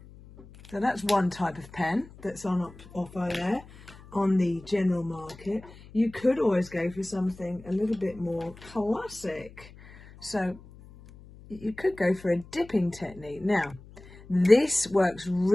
So that's one type of pen that's on offer there on the general market. You could always go for something a little bit more classic. So you could go for a dipping technique. Now, this works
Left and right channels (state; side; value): noise; left; hum, 20 dB below the sound